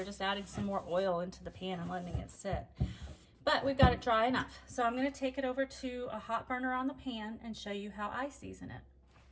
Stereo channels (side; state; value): both; identical; correlation 1.00